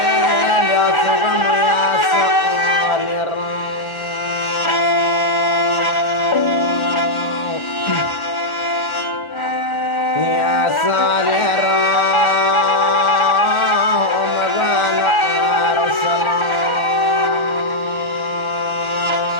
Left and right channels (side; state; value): right; late; 1.4 ms